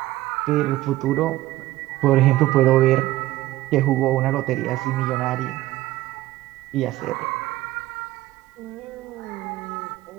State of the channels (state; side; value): quieter; left; 16.4 dB